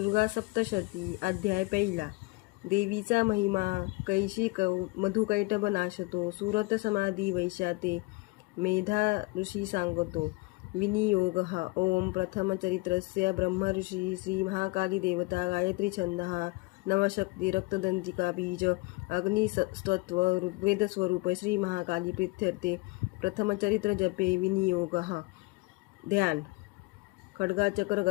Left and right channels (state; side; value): quieter; right; 24.3 dB